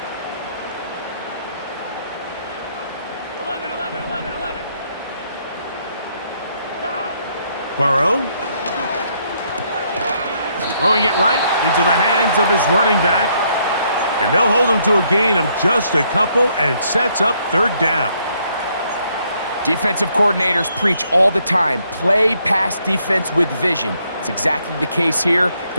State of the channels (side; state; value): both; inverted; correlation -0.71